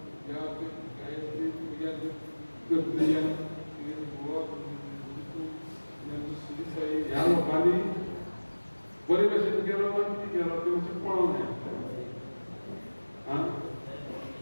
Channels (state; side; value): inverted; both; correlation -1.00